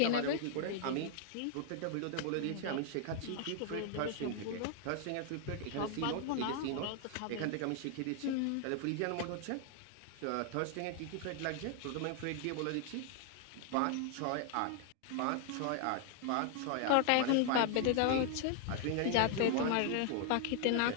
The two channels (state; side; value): different; both; correlation 0.00